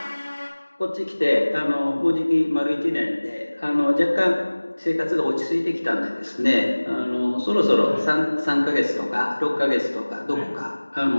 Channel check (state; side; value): inverted; both; correlation -1.00